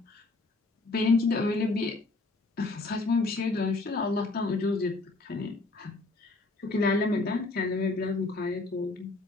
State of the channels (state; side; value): quieter; right; 3.3 dB